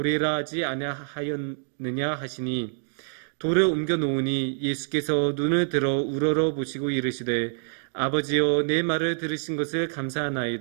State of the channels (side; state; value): left; silent; digital silence